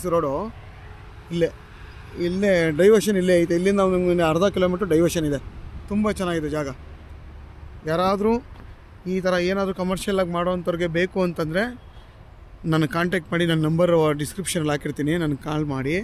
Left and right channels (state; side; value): identical; both; correlation 1.00